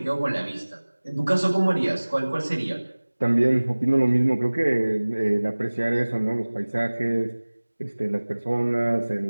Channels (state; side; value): inverted; both; correlation -1.00